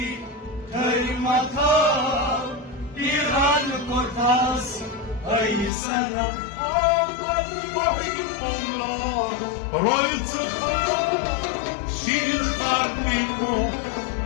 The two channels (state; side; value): drops out; right; at 5.7 s